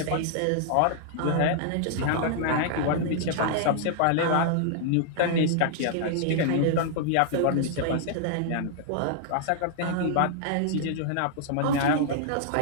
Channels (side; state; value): both; different; correlation 0.00